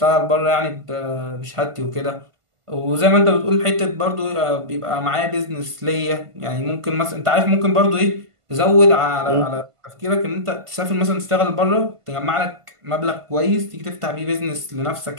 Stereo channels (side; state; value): left; late; 1.5 ms